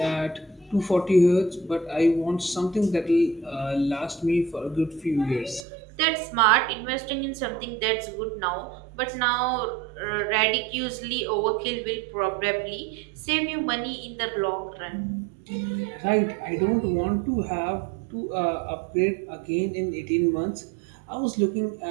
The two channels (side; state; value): left; drops out; at 5.7 s